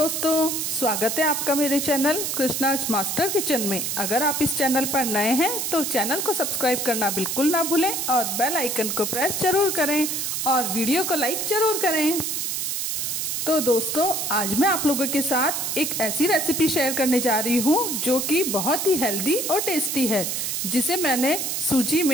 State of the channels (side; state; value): right; noise; hiss, 1 dB below the sound